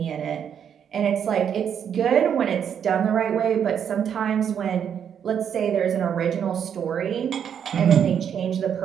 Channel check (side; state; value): left; quieter; 8.3 dB